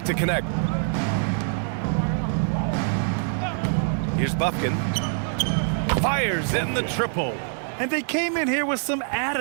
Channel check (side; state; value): left; silent; 62 dB below the other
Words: to Connect. Here's Buffkin. Fires in the triple. And they came in here with some